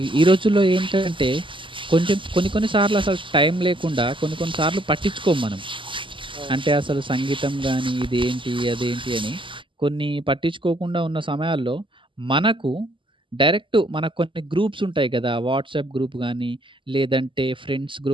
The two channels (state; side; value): late; left; 0.25 ms